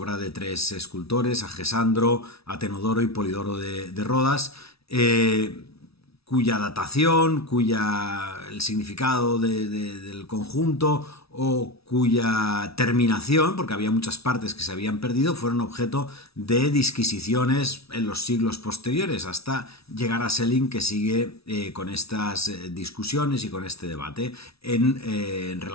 de tres escultores, Agesandro, Atenodoro y Polidoro de Rodas, cuya datación, el significado del conjunto o cuya terminación, porque había muchas partes que se habían perdido, fueron objeto de disquisiciones en los siglos posteriores, hasta llegar a Schelling, que sigue con estas discusiones y con este debate en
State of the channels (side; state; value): right; late; 0.77 ms